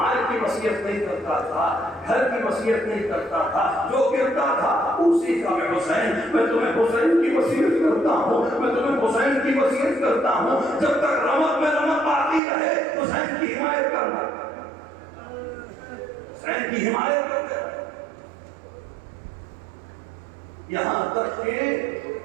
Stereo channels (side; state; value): left; drops out; at 12.4 s